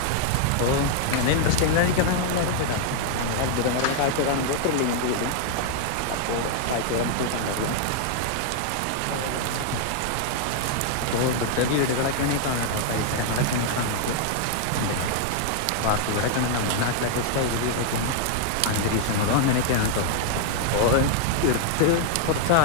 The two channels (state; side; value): different; both; correlation 0.00